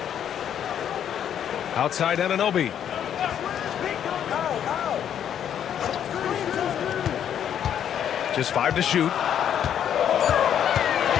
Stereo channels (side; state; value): right; quieter; 9.4 dB